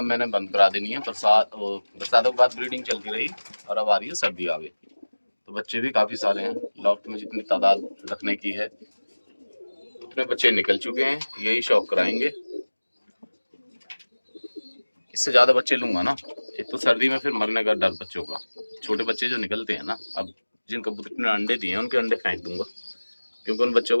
मैंने बंद करा देनी है। बरसातों के बाद ब्रीडिंग चलती रही और अब आ रही है सर्दी आ गई, तो बच्चे भी काफ़ी सारे हैं। लॉफ्ट में जितनी तादाद रखने की है उतने बच्चे निकल चुके हैं। यही शौक कराएंगे, इससे ज़्यादा बच्चे लूँगा ना। एक तो सर्दी में फिर मरने का डर बच्चों का। छोटे बच्चे जो निकलते हैं ना, अब जिन कबूतर ने अंडे दिए हैं उनके अंडे फेंक दूंगा, क्योंकि उन बच्चों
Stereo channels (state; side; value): inverted; both; correlation -1.00